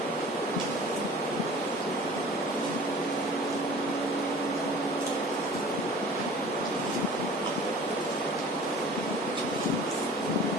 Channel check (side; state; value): both; normal; correlation 0.45